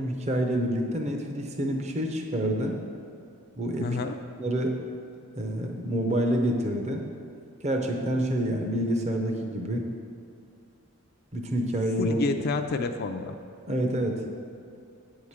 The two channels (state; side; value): normal; both; correlation 0.61